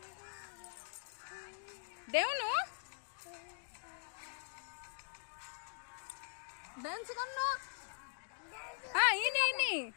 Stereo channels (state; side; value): silent; right; digital silence